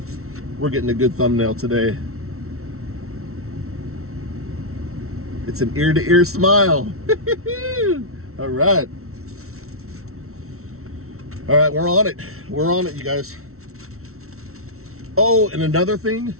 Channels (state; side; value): late; left; 0.63 ms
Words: We're getting a good thumbnail today. It's an ear-to-ear smile. All right, we're on it, you guys. Oh, and another thing.